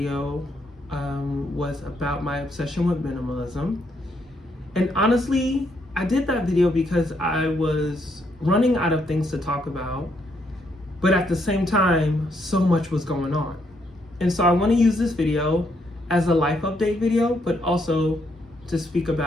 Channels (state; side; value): normal; both; correlation 0.74